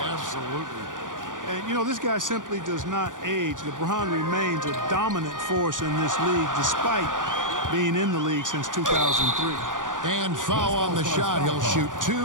Absolutely. And, you know, this guy simply does not age. LeBron remains a dominant force in this league despite being in the league since 2003. And foul on the shot. He'll shoot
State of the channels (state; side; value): late; left; 0.88 ms